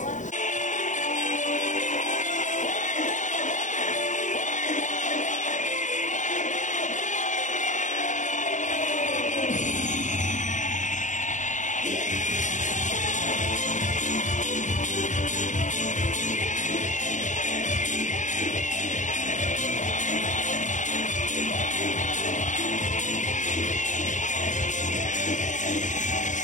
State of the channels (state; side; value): late; right; 0.36 ms